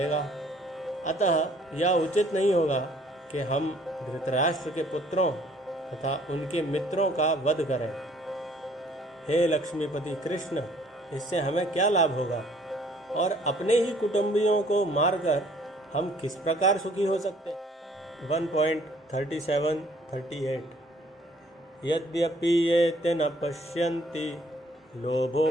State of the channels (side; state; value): both; normal; correlation 0.59